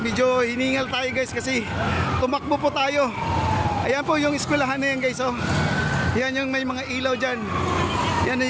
medyo hiningal tayo guys kasi tumakbo po tayo. Ayan po yung eskwelahan na yan guys, oh. Yan yung may mga ilaw dyan.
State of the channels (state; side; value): identical; both; correlation 1.00